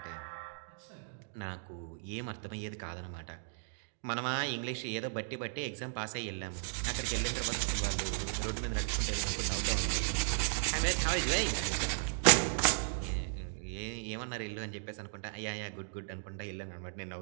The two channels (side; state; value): left; silent; digital silence